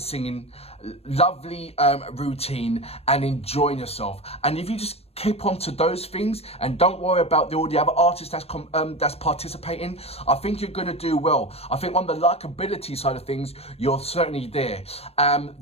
singing, lovely routine, and enjoying yourself. And if you just keep on to those things and don't worry about all the other artists that's participating, I think you're going to do well. I think on the likability side of things, you're certainly there.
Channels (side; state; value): right; late; 0.29 ms